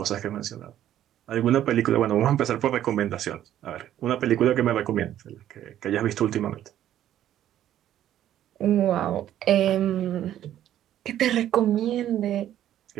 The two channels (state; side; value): quieter; left; 11.7 dB